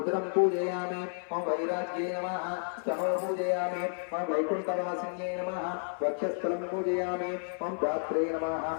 पूजयामि ओं वैराग्ये नमः स्तनो पूजयामि ओं वैकुण्ठवासिन्ये नमः वक्षस्थलं पूजयामि ओं गात्रे नमः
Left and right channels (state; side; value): silent; right; 55 dB below the other